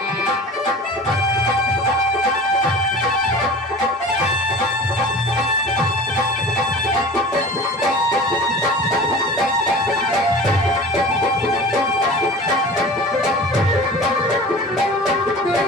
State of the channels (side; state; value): both; normal; correlation 0.38